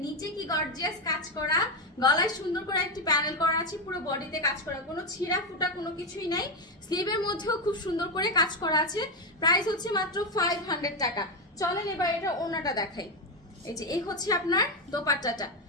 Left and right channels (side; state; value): both; normal; correlation 0.09